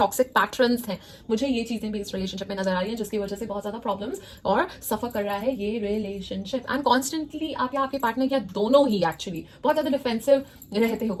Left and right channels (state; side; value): identical; both; correlation 1.00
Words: पैटर्न्स है, मुझे ये चीजें भी इस रिलेशनशिप में नजर आ रही है, जिसकी वजह से बहुत ज्यादा प्रॉब्लम्स और सफर कर रहा है ये रिलेशनशिप। एंड कॉन्स्टेंटली आप या आपके पार्टनर या दोनों ही एक्चुअली बहुत ज्यादा डिफेंसिव रहते हो,